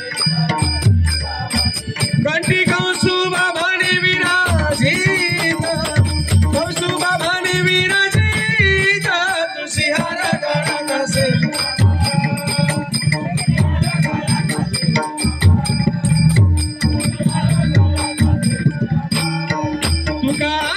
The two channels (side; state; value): both; identical; correlation 1.00